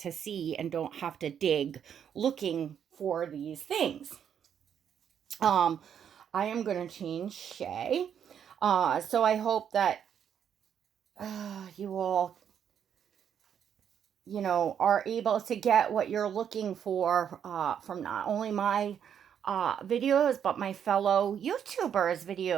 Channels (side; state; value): left; quieter; 8.5 dB